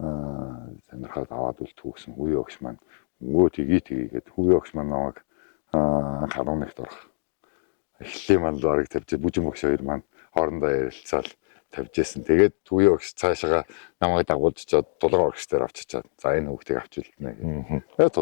сонирхоод аваад үлдэх гэсэн хүүе багш маань өнгөө тгийгээд хүүе багш маань намайг 11-т орох. Эхлэлийн манд барыг тавьж Бүжин багш хоёр маань хоорондоо ярилцаал тавьж байсан. Тэгээд хүүе багш цаашаа намайг дагуулж чад тулгаа багштай авчичаад за энэ хүүхдийг авч үлдэнэ гэх. Тэгээд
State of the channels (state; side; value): silent; right; digital silence